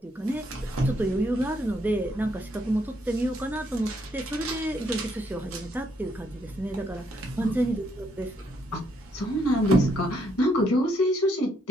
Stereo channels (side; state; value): both; normal; correlation 0.73